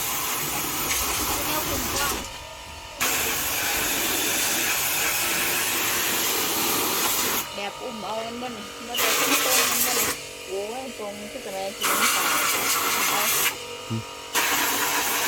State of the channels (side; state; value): both; identical; correlation 1.00